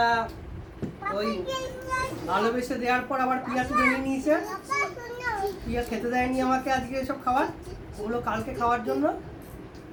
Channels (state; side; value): identical; both; correlation 1.00